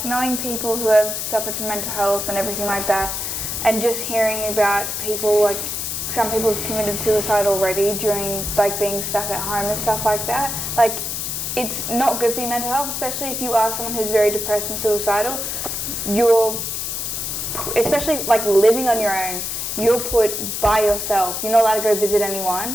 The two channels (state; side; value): noise; left; hiss, 3 dB below the sound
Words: knowing people who have suffered from mental health and everything like that, and just hearing about people, some people have committed suicide already during, being stuck at home and stuff like that, it's not good for your mental health, especially if you are someone who's very depressed and suicidal. Especially living on your own, you're put by yourself. You're not allowed to go visit